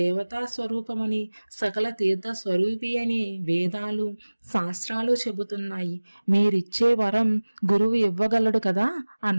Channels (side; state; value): both; inverted; correlation -1.00